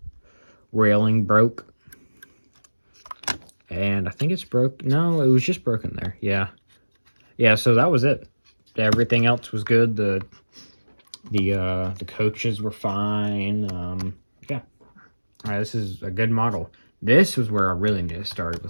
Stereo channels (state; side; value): inverted; both; correlation -1.00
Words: railing broke. And I think it's broke. No, it was just broken there. Yeah. Yeah, so that was it. Everything else was good. The coaches were fine. Yeah. All right, this is a good model. This was where I really need to start